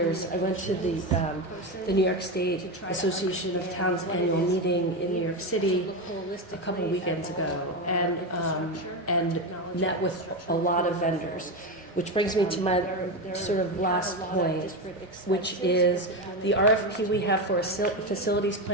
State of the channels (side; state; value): both; normal; correlation 0.15